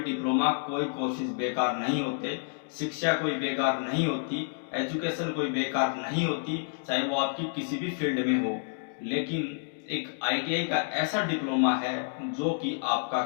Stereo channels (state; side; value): silent; right; digital silence